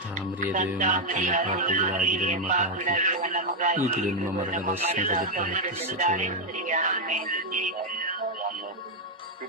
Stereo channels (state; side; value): normal; both; correlation 0.01